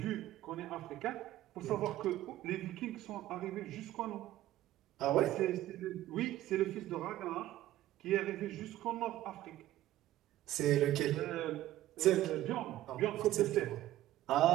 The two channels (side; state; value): left; quieter; 14.3 dB